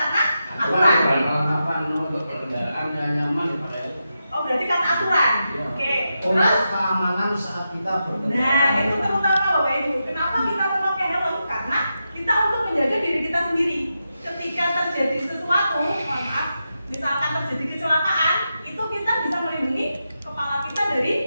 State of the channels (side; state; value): both; inverted; correlation -0.88